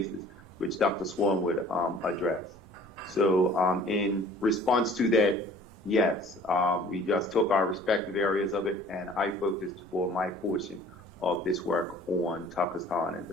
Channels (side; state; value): both; normal; correlation 0.50